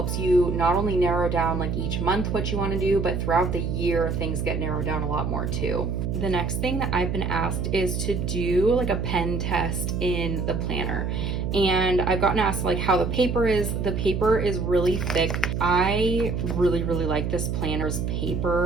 you not only narrow down like each month what you want to do, but throughout the year things get narrowed down a lot more too. The next thing that I've been asked is to do like a pen test in the planner. And I've gotten asked like how the paper is. The paper is really thick. I really, really like this planner's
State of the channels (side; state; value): right; noise; hum, 1 dB below the sound